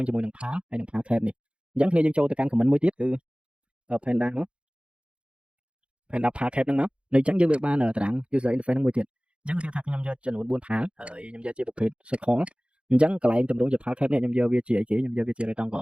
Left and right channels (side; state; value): left; late; 0.059 ms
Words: ជាមួយនឹង PAL ហើយនឹង PAL cap នេះអញ្ចឹងគ្នាយើងចូលទៅកាន់ comment មួយទៀតគឺ Panda មក Panda PAL cap ហ្នឹងមកនៅអញ្ចឹងយើងវាបានតារាង user interface ហ្នឹងមួយទៀតអញ្ចឹងគេថាខ្ញុំយកចំនួន4 PAL ហើយខ្ញុំយកជាប្រភេទ circle អញ្ចឹងកន្លែងតម្រង់ជា PAL cap នេះខ្ញុំយកវាជាអីគេខ្ញុំយកវាជា